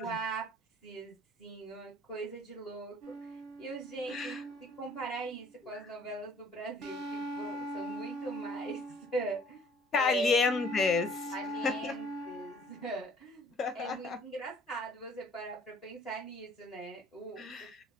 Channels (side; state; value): both; normal; correlation 0.56